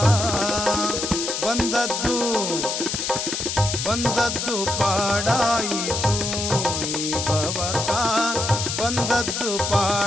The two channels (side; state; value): left; noise; hiss, 2 dB below the sound